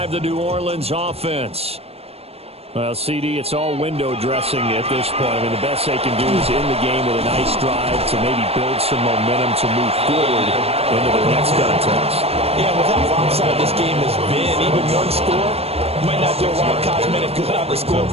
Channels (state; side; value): late; left; 0.29 ms